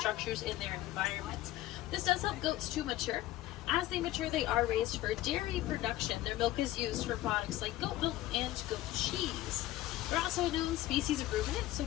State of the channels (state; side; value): quieter; right; 15.4 dB